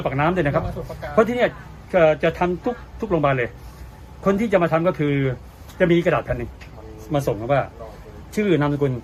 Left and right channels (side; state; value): both; identical; correlation 1.00